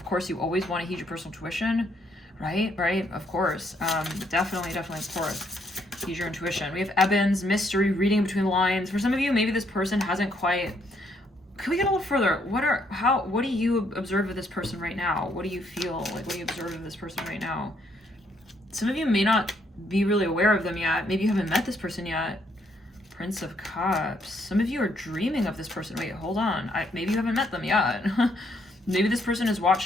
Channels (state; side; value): normal; both; correlation 0.72